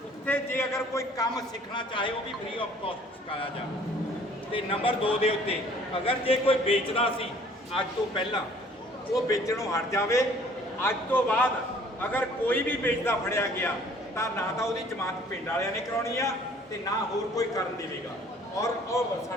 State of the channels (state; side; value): normal; both; correlation 0.55